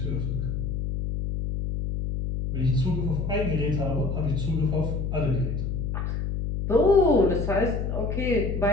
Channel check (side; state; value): left; noise; hum, 2 dB below the sound